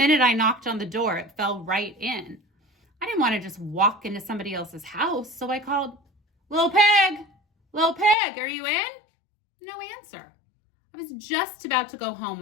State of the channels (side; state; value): right; drops out; at 8.2 s